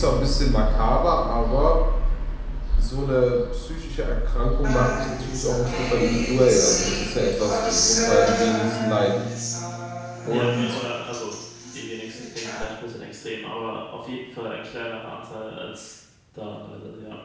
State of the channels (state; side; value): identical; both; correlation 1.00